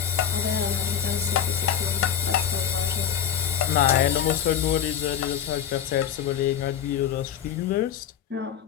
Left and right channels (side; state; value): right; quieter; 9.1 dB